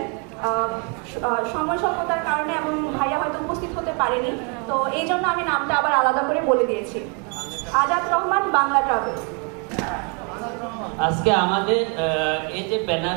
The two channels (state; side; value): quieter; left; 35.5 dB